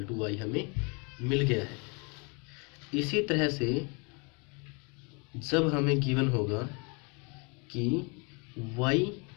to Y हमें मिल गया है। इसी तरह से जब हमें गिवन होगा कि Y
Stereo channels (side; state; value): right; quieter; 32.3 dB